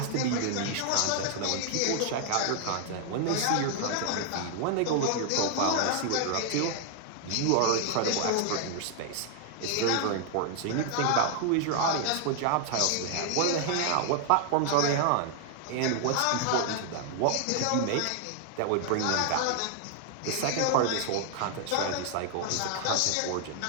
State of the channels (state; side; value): different; both; correlation 0.00